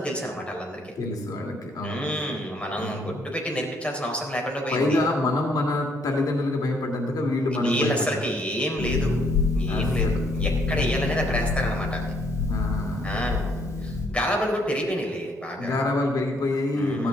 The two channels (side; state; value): both; normal; correlation 0.68